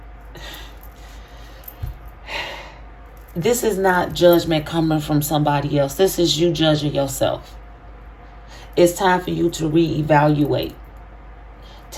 this is not judgment coming from somebody else. This is you judging yourself. It's time for you to reevaluate.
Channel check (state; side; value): identical; both; correlation 1.00